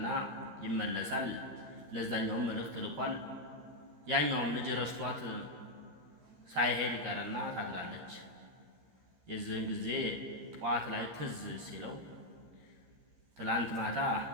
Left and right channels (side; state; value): left; late; 13 ms